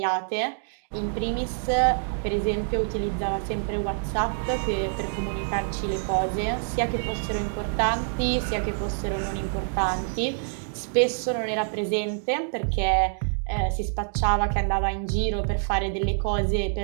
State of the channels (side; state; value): left; silent; digital silence